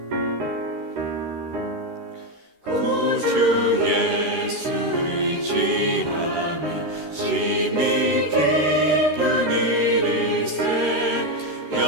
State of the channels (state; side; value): late; left; 13 ms